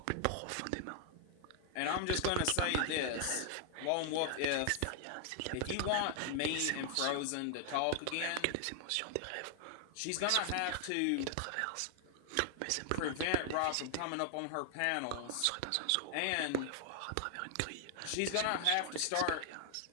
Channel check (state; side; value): different; both; correlation 0.00